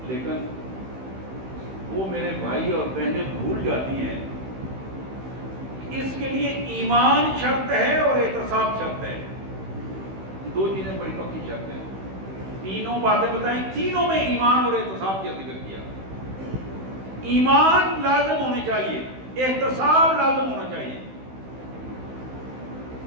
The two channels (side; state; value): left; late; 16 ms